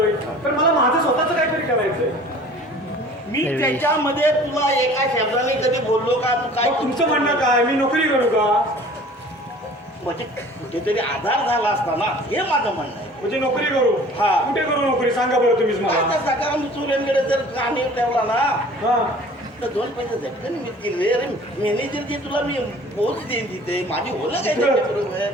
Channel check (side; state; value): both; normal; correlation 0.47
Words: तर मला माझं स्वतःच काहीतरी करायचंय. मी त्याच्यामध्ये तुला एका शब्दाने कधी बोललो का? तू काय तुमचं म्हणणं काय मी नोकरी करू का? म्हणजे कुठेतरी आधार झाला असता ना हे माझं म्हणणं आहे. म्हणजे नोकरी करू? हा. कुठे करू नोकरी सांगा बरं तुम्हीच मला. सकाळ चुऱ्यांकडे जर कानी ठेवला ना हा तर 2 पैसे झटकन मिळतील. अरे मॅनेजर जे तुला मी पोच देईन तिथे माझी होलं काय बरोबर